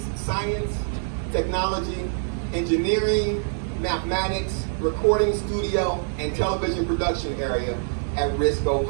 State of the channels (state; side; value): silent; left; 62 dB below the other